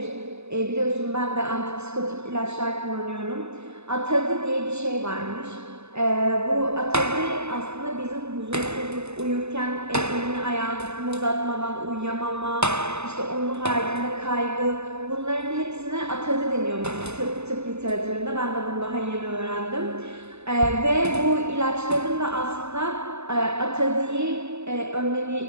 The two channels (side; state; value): left; late; 0.80 ms